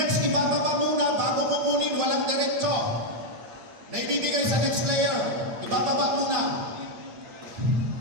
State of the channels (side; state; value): left; late; 8.9 ms